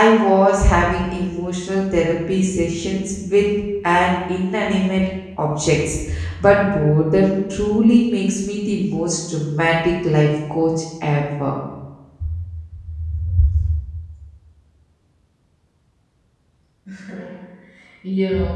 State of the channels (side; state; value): both; identical; correlation 1.00